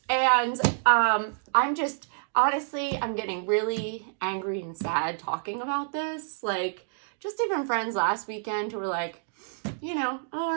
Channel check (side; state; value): left; silent; digital silence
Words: and I'm getting really angry and sad talking about this. Just even friends last weekend who were